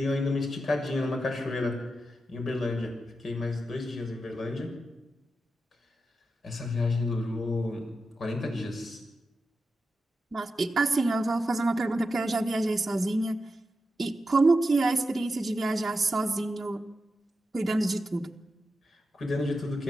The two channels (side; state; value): both; normal; correlation 0.89